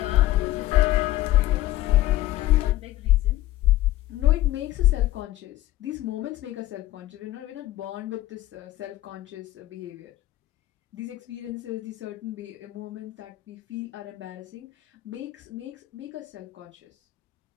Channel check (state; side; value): quieter; right; 15.6 dB